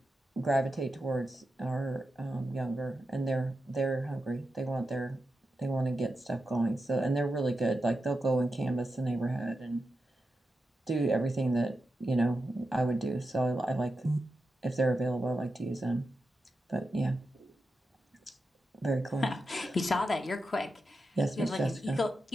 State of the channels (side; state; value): both; normal; correlation 0.89